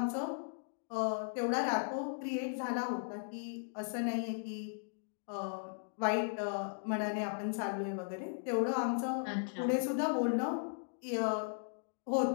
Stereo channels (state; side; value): silent; right; digital silence